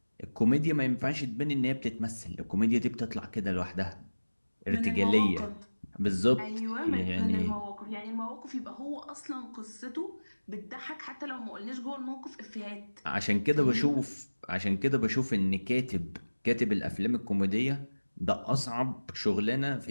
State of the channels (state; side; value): inverted; both; correlation -1.00